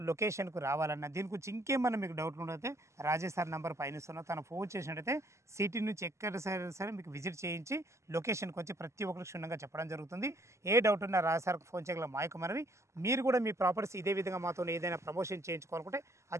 లొకేషన్కు రావాలన్న దీని గురించి ఇంకేమన్నా మీకు డౌట్లు ఉండైతే రాజేష్ సార్ నెంబర్ పైన ఇస్తున్నా, తను ఫోన్ చేసినట్టయితే సిటీ నుంచి ఎక్కడ సరే మీకు విజిట్ చేయించి లొకేషన్కి వచ్చి ప్రతి ఒక్కరికి క్షుణ్ణంగా చెప్పడం జరుగుతుంది. ఏ డౌట్ ఉన్నా రాజేష్ సార్కి ఫోన్ చేయగల మాయకు మనవి. మీరు కూడా మీ ప్రాపర్టీస్ ఇదే విధంగా మాతో ఏదైనా ప్రమోషన్ చేయించుకోవాలనుకుంటే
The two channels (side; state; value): left; late; 0.14 ms